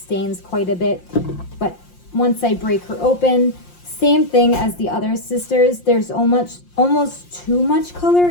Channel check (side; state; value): right; late; 5.7 ms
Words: quite a bit. But once I break her open, same thing as the other sisters. There's almost too much color